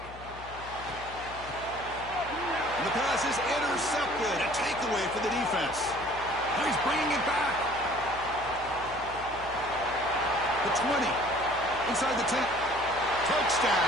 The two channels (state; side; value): noise; left; hum, 16 dB below the sound